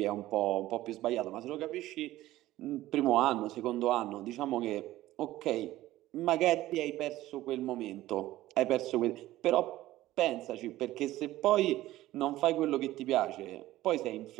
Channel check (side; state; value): left; quieter; 15.7 dB